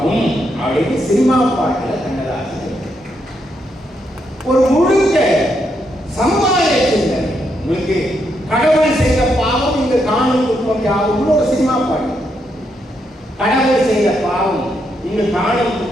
அப்படின்னு சினிமா பாட்டுல கண்ணதாசன் ஒரு முழுக்க சமுதாய சிந்தனை. உங்களுக்கு கடவுள் செய்த பாவம் இங்கு காணும் துன்பம் யாவும் ஒரு சினிமா பாட்டு. கடவுள் செய்த பாவம் இங்கு காணும்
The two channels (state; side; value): normal; both; correlation 0.79